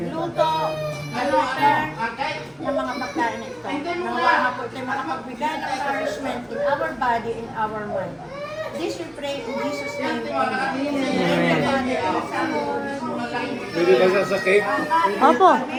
nag-prepare ng mga pagkain na ito. Nawa nga po ito makapagbigay ng nourishment in our body, in our mind. This we pray in Jesus' name. Amen. Pwede ba sa cake? Opo.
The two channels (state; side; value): identical; both; correlation 1.00